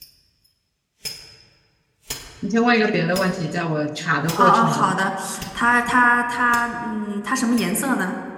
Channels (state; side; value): identical; both; correlation 1.00